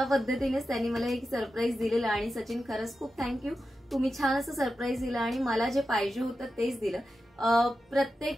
पद्धतीनेच त्यांनी मला एक सरप्राईज दिलेलं. आणि सचिन खरंच खूप थँक्यू, तुम्ही छान असं सरप्राईज दिलं आणि मला जे पाहिजे होतं तेच दिलं.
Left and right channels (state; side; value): normal; both; correlation 0.91